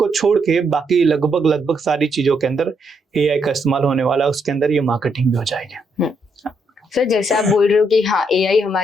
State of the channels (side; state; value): both; normal; correlation 0.76